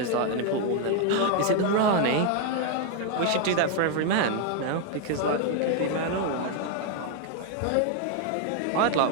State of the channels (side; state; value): both; different; correlation 0.00